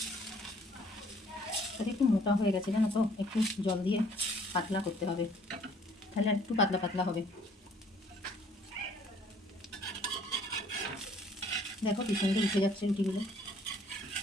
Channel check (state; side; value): normal; both; correlation 0.59